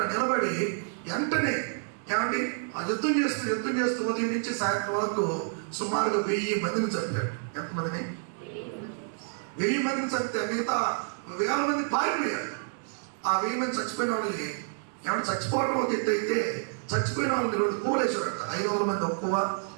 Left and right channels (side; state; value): left; silent; digital silence